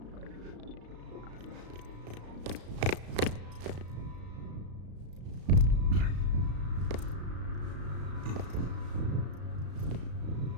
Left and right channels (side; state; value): left; late; 34 ms